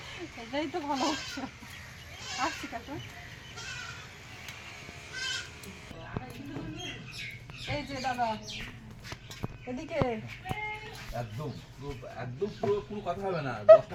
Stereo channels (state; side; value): identical; both; correlation 1.00